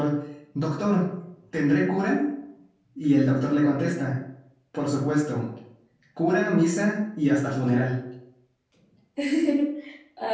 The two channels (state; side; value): identical; both; correlation 1.00